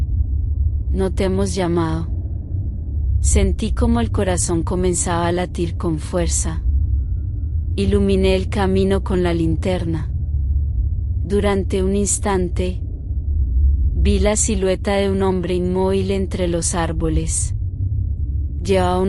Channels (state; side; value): identical; both; correlation 1.00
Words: no te hemos llamado. Sentí como el corazón comenzaba a latir con fuerza. Iluminé el camino con la linterna. Durante un instante, vi la silueta de un hombre inmóvil entre los árboles. Llevaba